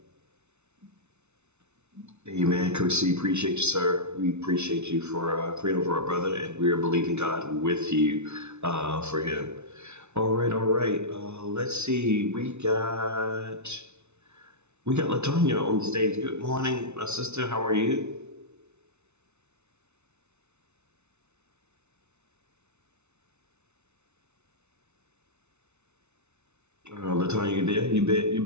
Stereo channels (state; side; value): late; left; 0.82 ms